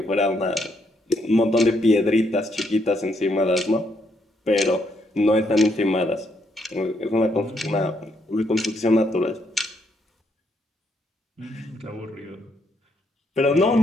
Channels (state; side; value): normal; both; correlation 0.75